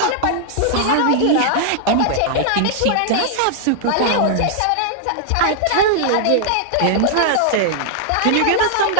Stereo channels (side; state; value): both; different; correlation -0.01